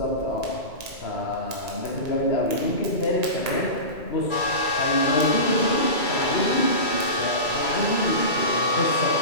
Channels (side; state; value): right; late; 2.3 ms